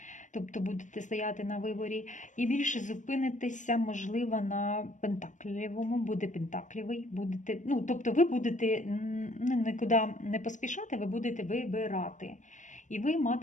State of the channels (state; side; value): late; right; 0.36 ms